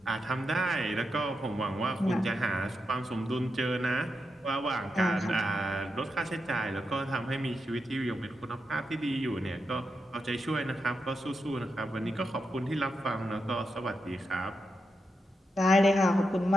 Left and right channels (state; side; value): normal; both; correlation 0.86